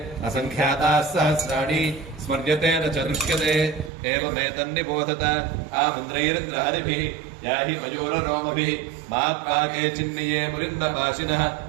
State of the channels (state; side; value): drops out; left; at 3.9 s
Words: असङ्ख्याताः सहस्राणि स्मर्यते न च दृश्यते एवमेतन्निबोधत आमन्द्रैरिन्द्रहरिभिः याहि मयूररोमभिः मात्वाके चिन्निये मुरिन्दपाशिनः